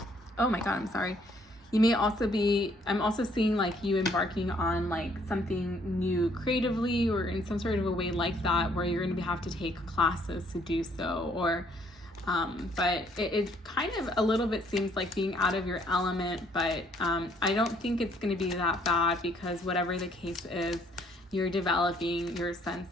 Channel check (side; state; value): both; normal; correlation 0.65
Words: oh my God, I'm sorry. You may also be, I'm also seeing like you embarking on like something new creatively, or in some sort of a way like that, where you're going to have to take classes to do so, or but it kind of a little bit seems like being out of your element, but I don't think it's going to be that bad, because whatever the case is, you're developing your sense